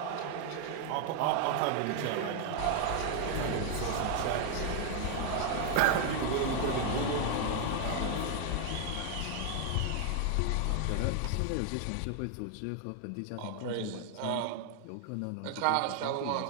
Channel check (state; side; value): different; both; correlation 0.00